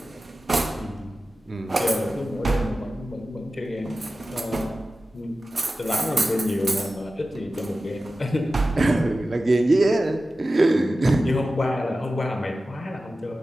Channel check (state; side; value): normal; both; correlation 0.94